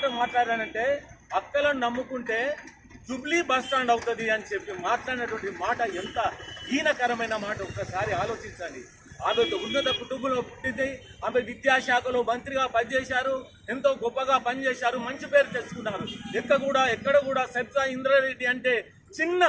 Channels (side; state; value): both; identical; correlation 1.00